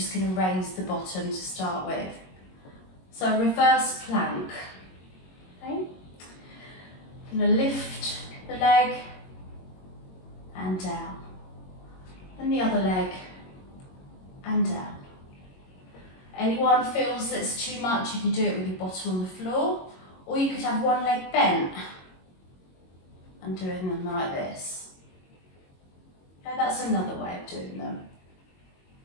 going to raise the bottom to start with. So reverse plank. Okay. Going to lift the leg and down. And the other leg and down. Anyone feels that's too much, you can do it with your bottom on the floor, or you could have one leg bent and doing them like this. Okay, that's another way of doing them.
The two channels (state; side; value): late; right; 22 ms